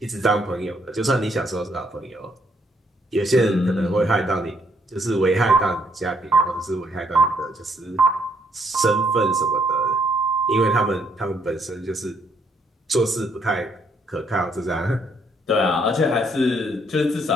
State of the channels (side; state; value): both; normal; correlation 0.71